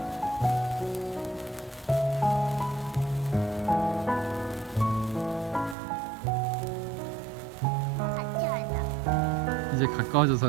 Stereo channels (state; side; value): drops out; left; at 5.8 s